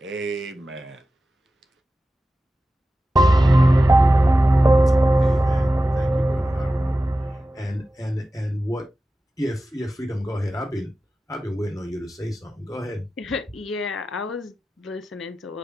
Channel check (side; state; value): both; normal; correlation 0.94